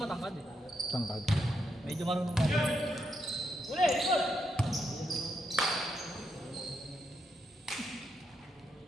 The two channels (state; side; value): normal; both; correlation 0.81